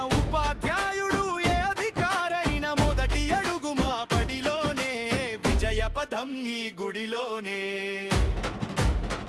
ఉపాధ్యాయుడు ఏ అధికారైనా మొదటి అడుగు మా పడిలోనే, విజయ పదం ఈ గుడిలోనే.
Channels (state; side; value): identical; both; correlation 1.00